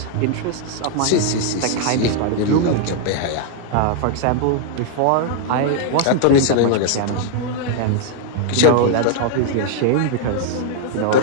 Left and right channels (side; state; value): both; different; correlation 0.00